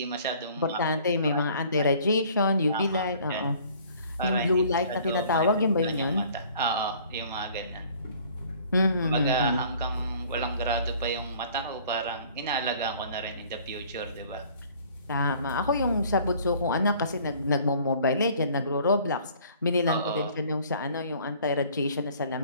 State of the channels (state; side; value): inverted; both; correlation -0.54